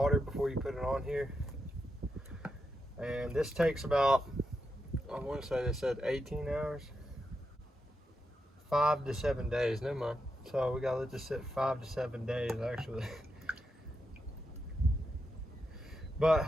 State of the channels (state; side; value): normal; both; correlation 0.86